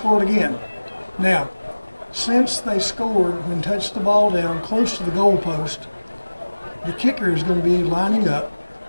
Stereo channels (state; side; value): inverted; both; correlation -1.00